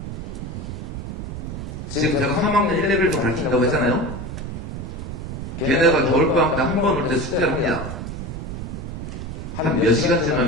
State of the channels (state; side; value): noise; right; rumble, 7 dB below the sound